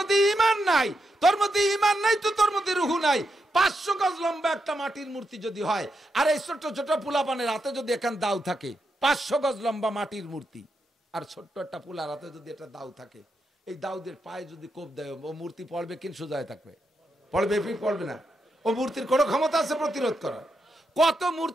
ঈমান নাই, তো তোর মধ্যে রূহ নাই। 500 গজ লম্বা একটা মাটির মূর্তি যদি হয়, আর এই ছোট ছোট পোলাপানের হাতে যদি এখান দাও থাকে, 500 গজ লম্বা মাটির মূর্তি, আর ছোট্ট একটা পোলার হাতে যদি একটা দাও থাকে, এই দাউদের পায়ে যদি কোপ দেয়, ও মূর্তি পড়বে কিন সোজায় থাকবে? পড়বে না। ও মূর্তির কোনো ক্ষমতা আছে প্রতিরোধ করার? কত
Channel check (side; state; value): both; normal; correlation 0.84